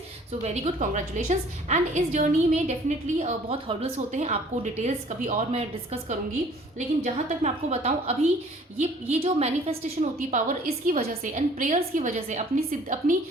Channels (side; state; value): both; normal; correlation 0.54